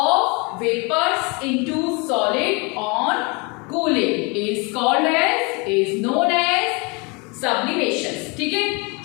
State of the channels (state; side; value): quieter; right; 29.9 dB